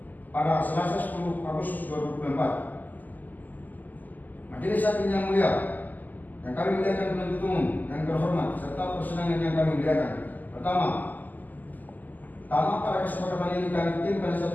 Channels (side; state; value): right; late; 0.083 ms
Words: pada Selasa 10 Agustus 2024. Majelis Hakim yang mulia, yang kami muliakan penuntut umum yang terhormat serta persidangan yang kami muliakan. Pertama, tamat pada kesepakatan ini kami tim